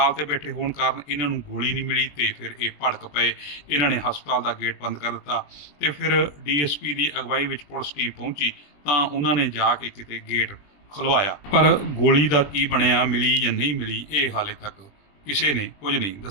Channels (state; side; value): late; right; 21 ms